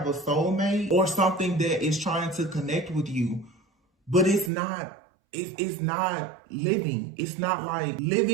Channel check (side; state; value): left; drops out; at 4.5 s